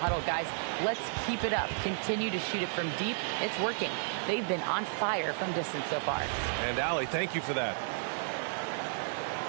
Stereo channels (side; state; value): left; silent; digital silence